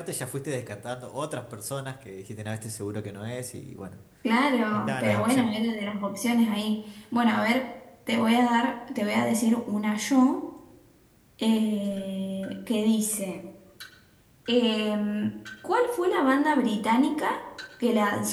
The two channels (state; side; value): identical; both; correlation 1.00